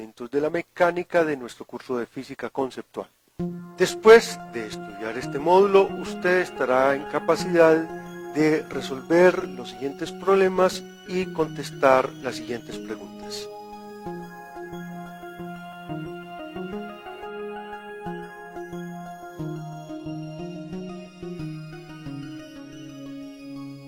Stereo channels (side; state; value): both; identical; correlation 1.00